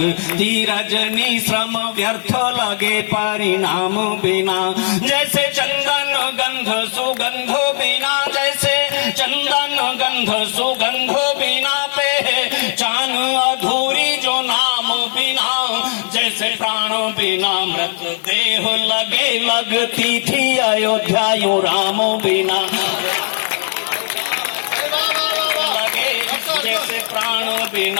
रजनी, श्रम व्यर्थ लगे परिणाम बिना, जैसे चंदन गंध सुगंध बिना, जैसे चंदन गंध सुगंध बिना, पहचान अधूरी जो नाम बिना, जैसे प्राण बिना मृत देह लगे, लगती थी अयोध्या यूं राम बिना, जैसे प्राण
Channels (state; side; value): silent; right; digital silence